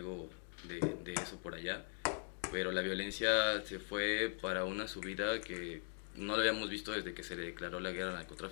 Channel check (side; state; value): right; silent; 51 dB below the other